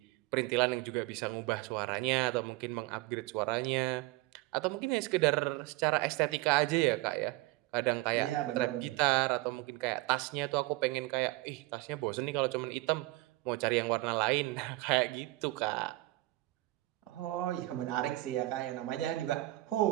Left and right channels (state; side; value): quieter; left; 20.0 dB